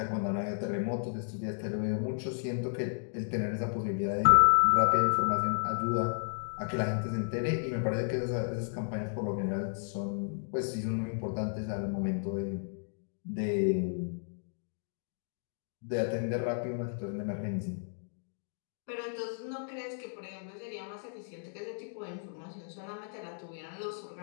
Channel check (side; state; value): right; silent; digital silence